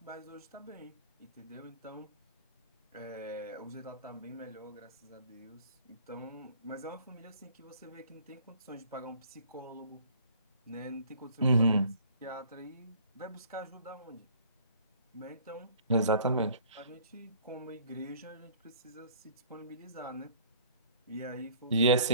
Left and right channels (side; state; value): both; inverted; correlation -0.51